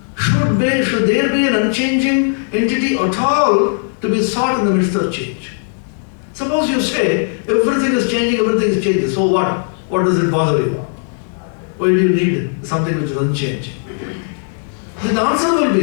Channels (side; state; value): right; silent; digital silence